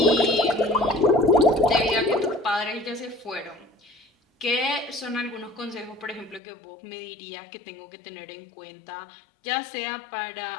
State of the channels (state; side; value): drops out; right; at 6.4 s